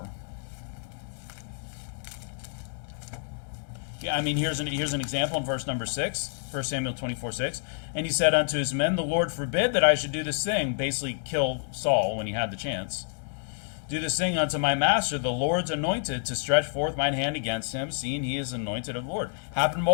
Yeah, here's an example in verse number 6, 1 Samuel 24:6. And he said unto his men, the Lord forbid that I should do this thing, basically kill Saul when he had the chance. Do this thing unto my master, the Lord's anointed, to stretch forth mine hand against him, seeing he is anointed of the Lord. Happened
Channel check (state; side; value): silent; right; digital silence